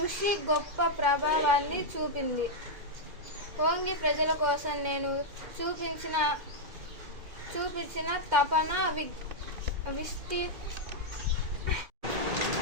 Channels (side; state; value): left; late; 2.1 ms